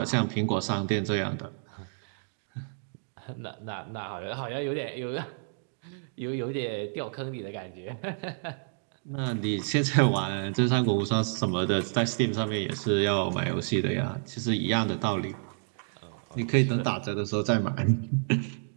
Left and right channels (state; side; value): silent; left; digital silence